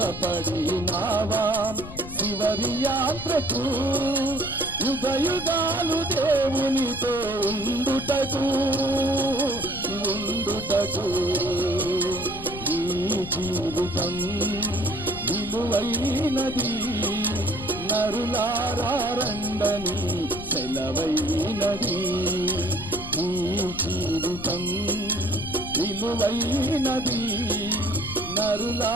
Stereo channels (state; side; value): noise; left; rumble, 12 dB below the sound